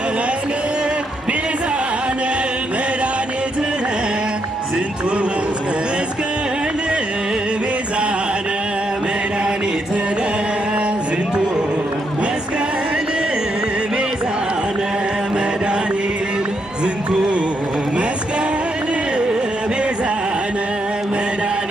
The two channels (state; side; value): normal; both; correlation 0.78